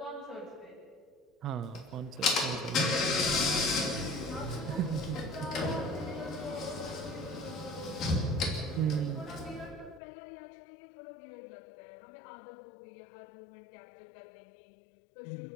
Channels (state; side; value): drops out; right; at 10.0 s